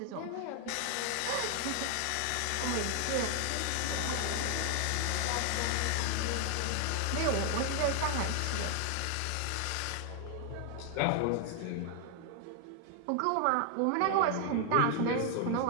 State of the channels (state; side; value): different; both; correlation 0.00